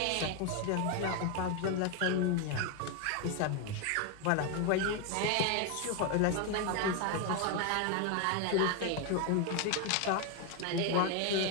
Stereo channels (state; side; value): different; both; correlation 0.01